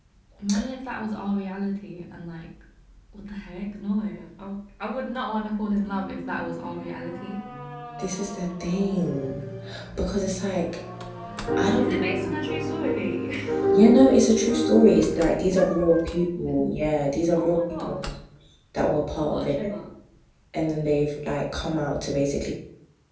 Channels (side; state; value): both; identical; correlation 1.00